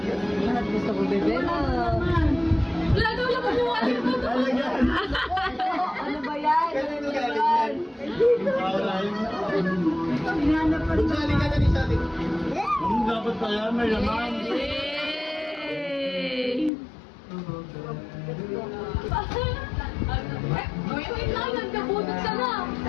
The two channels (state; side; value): drops out; right; at 16.7 s